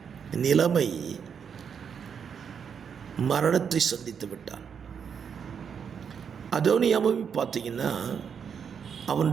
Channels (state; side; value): quieter; left; 7.1 dB